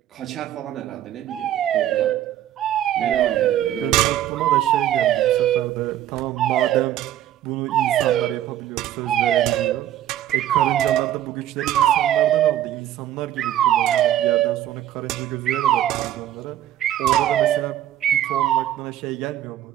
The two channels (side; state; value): left; quieter; 12.2 dB